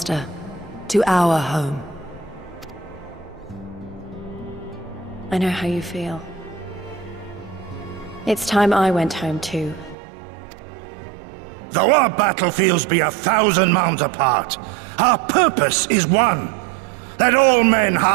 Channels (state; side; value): drops out; left; at 10.0 s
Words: to our home. I know how you feel. It's time I went home too. Though our battlefields be 1,000 mounds apart, our purpose is one. Let all men